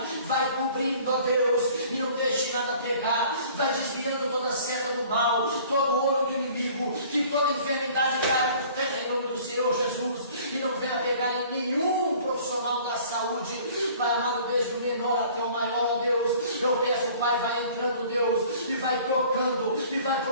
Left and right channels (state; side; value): inverted; both; correlation -0.51